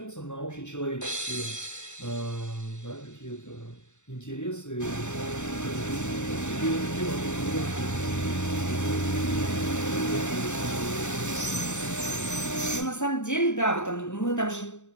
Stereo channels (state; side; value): late; right; 0.84 ms